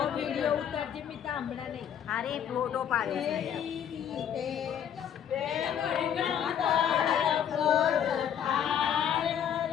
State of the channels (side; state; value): right; quieter; 9.1 dB